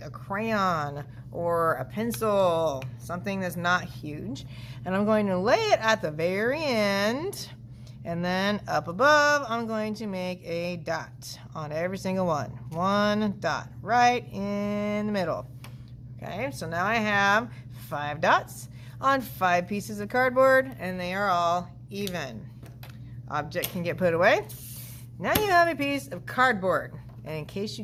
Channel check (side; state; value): both; identical; correlation 1.00